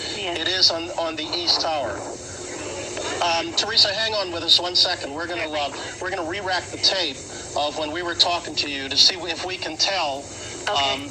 Yes. It is on the east tower. Teresa, hang on with us 1 second. We're gonna re-rack the tape of when we were talking to you to see if we can tell. Okay.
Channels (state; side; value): identical; both; correlation 1.00